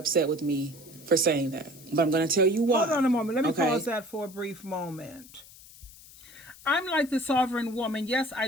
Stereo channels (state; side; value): noise; left; hiss, 20 dB below the sound